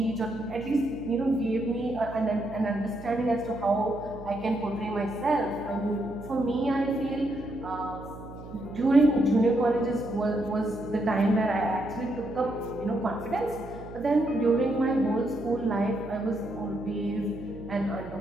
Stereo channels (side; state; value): right; noise; hum, 14 dB below the sound